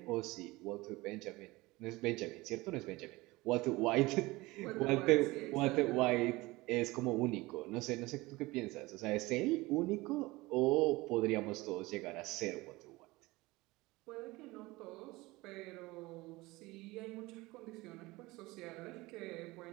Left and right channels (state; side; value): quieter; left; 21.1 dB